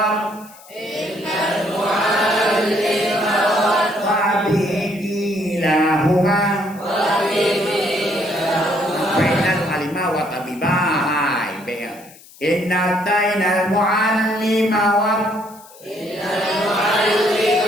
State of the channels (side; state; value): left; noise; hiss, 23 dB below the sound